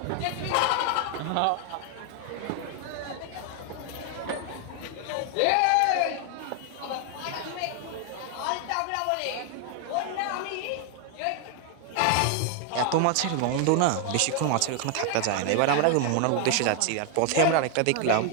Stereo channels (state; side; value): different; both; correlation 0.00